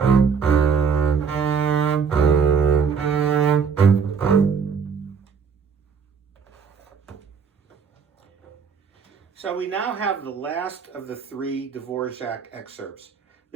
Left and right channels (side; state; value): left; quieter; 6.2 dB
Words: So we now have the last of the 3 Dvorak excerpts.